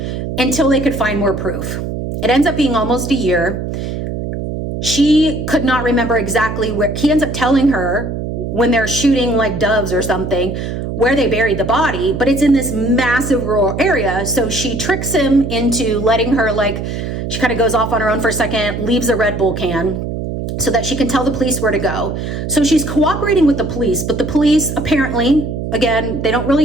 until they could find more proof. It ends up being almost a year. She could not remember exactly where. He ends up telling her when they're shooting, like, doves or something, where they buried the body, but it's in this massive rural area. So she tricks him into letting her, like, she kind of goes off on her own for a second, leaves a Red Bull can, so that she can tell the police where to go. So she's cooperating with the police, but the police apparently, again, they don't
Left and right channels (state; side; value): noise; right; hum, 5 dB below the sound